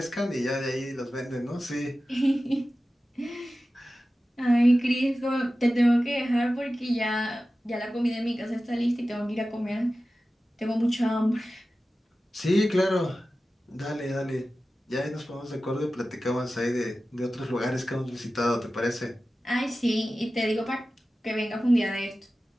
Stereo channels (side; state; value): both; normal; correlation 0.95